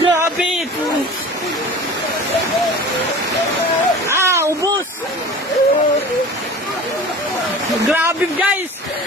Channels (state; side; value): normal; both; correlation 0.39